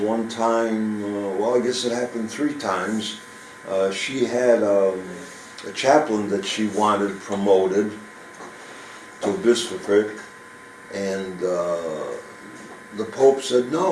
time, well, I guess it happened 3 times, she had a chaplain that she wanted promoted to bishopric, and the Pope said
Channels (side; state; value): both; identical; correlation 1.00